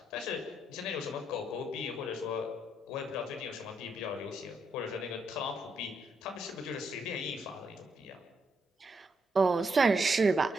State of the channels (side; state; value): both; normal; correlation 0.78